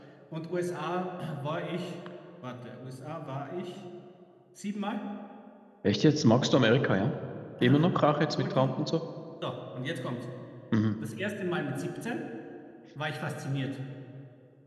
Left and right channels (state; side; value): identical; both; correlation 1.00